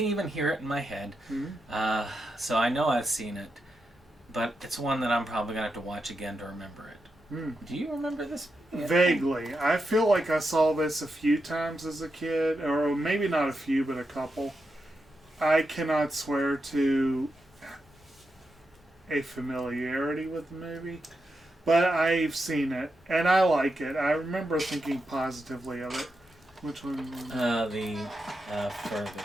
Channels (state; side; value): normal; both; correlation 0.86